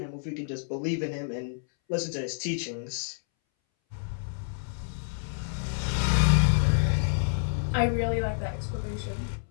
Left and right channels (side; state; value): right; silent; 59 dB below the other